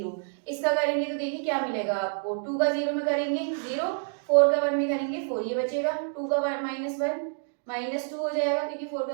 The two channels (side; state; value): left; silent; 59 dB below the other